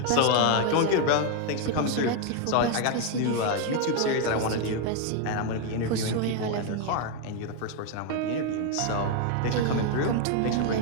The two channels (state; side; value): different; both; correlation 0.01